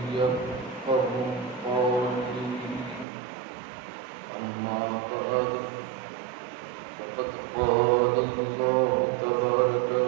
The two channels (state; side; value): drops out; left; at 3.1 s